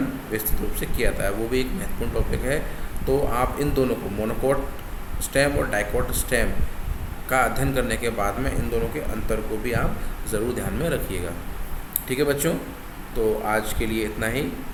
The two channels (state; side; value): identical; both; correlation 1.00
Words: विस्तृत रूप से किया था। वो भी एक महत्वपूर्ण टॉपिक है। तो आप इन दोनों को मोनोकोट स्टेम और डाइकोट स्टेम का अध्ययन करने के बाद में इन दोनों के अंतर को भी आप ज़रूर ध्यान में रखिएगा। ठीक है बच्चों, तो आज के लिए इतना ही।